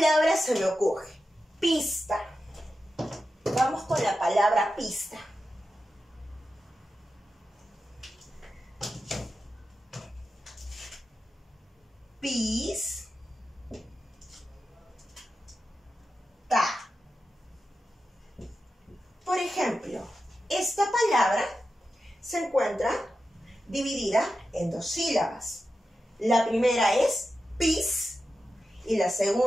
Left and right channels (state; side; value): normal; both; correlation 0.91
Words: se me ocurre? Pista. Vamos con la palabra pista. Pis, ta. Por ejemplo, esta palabra se encuentra dividida en 2 sílabas. La primera es pis y la